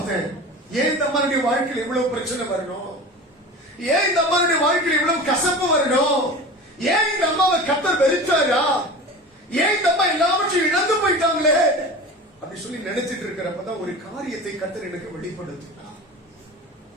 ஏன் இந்த அம்மாவுடைய வாழ்க்கையில் இவ்வளவு பிரச்சனை வரணும்? ஏன் இந்த அம்மாவுடைய வாழ்க்கையில் இவ்வளவு கசப்பு வரணும்? ஏன் இந்த அம்மாவை கர்த்தர் வெறுத்தாரா? ஏன் இந்த அம்மா எல்லாவற்றையும் இழந்து போயிட்டாங்களே அப்படி சொல்லி நினைச்சிட்டு இருக்கிறப்பதான் ஒரு காரியத்தை கர்த்தர் எனக்கு வெளிப்படுத்தினார்.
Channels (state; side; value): normal; both; correlation 0.34